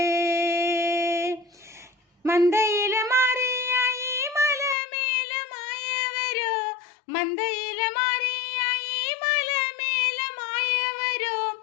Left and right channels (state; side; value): drops out; right; at 4.8 s